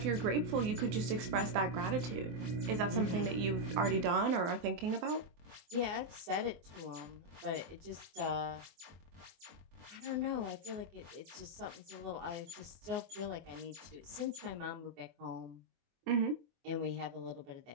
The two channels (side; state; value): left; late; 24 ms